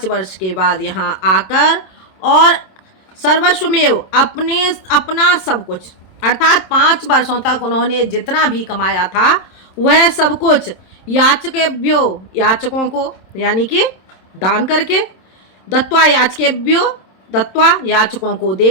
वर्ष के बाद यहाँ आकर और सर्वस्वमेव अपना सब कुछ, अर्थात 5 वर्षों तक उन्होंने जितना भी कमाया था वह सब कुछ याचकेभ्यो, याचकों को यानी कि दान करके, दत्त्वा याचकेभ्यो, दत्त्वा याचकों को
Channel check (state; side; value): late; right; 27 ms